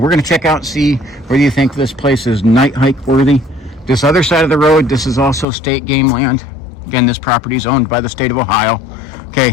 going to check out and see whether you think this place is night hike worthy. This other side of the road, this is also state game land. Again, this property is owned by the state of Ohio.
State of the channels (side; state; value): right; drops out; at 5.5 s